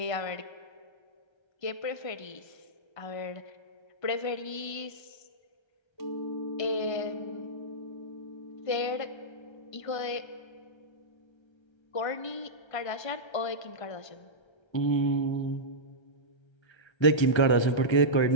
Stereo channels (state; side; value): late; right; 1.3 ms